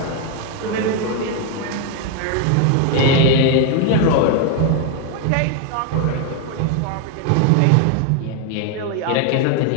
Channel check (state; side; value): different; both; correlation 0.01